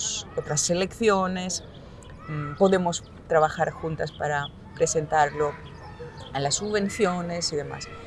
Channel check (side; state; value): both; identical; correlation 1.00